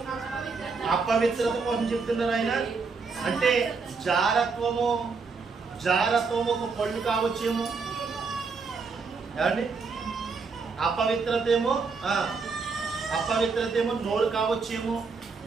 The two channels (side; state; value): left; quieter; 4.7 dB